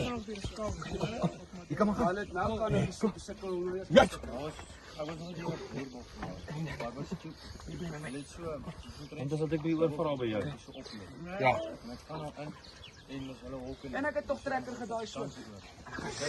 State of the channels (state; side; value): identical; both; correlation 1.00